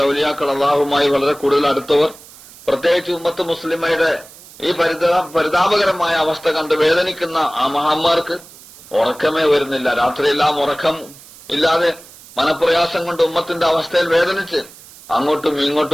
ഔലിയാക്കൾ, അള്ളാഹുമായി വളരെ കൂടുതൽ അടുത്തവർ, പ്രത്യേകിച്ച് ഉമ്മത്ത് മുസ്ലിമയുടെ ഈ പരിതാപകരമായ അവസ്ഥ കണ്ട് വേദനിക്കുന്ന ആ മഹാന്മാർക്ക് ഉറക്കമേ വരുന്നില്ല. രാത്രിയെല്ലാം ഉറക്കം ഇല്ലാതെ മനപ്രയാസം കൊണ്ട് ഉമ്മത്തിന്റെ അവസ്ഥയിൽ വേദനിച്ച് അങ്ങോട്ടും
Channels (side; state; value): right; noise; hiss, 21 dB below the sound